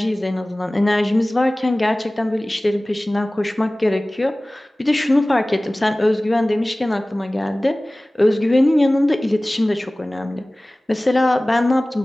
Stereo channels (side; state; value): both; normal; correlation 0.98